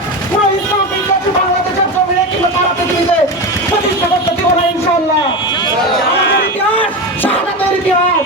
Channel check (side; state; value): both; normal; correlation 0.21